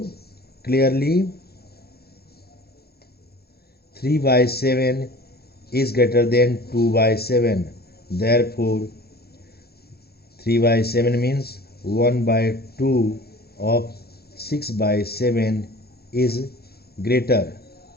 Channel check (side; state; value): right; late; 0.46 ms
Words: clearly 3 by 7 is greater than 2 by 7. Therefore 3 by 7 means 1 by 2 of 6 by 7 is greater